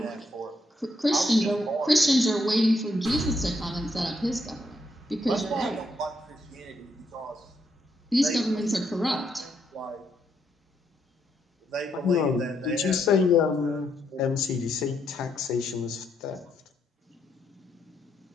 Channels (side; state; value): both; normal; correlation 0.77